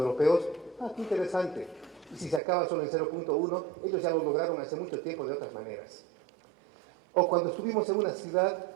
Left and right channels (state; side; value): drops out; left; at 2.4 s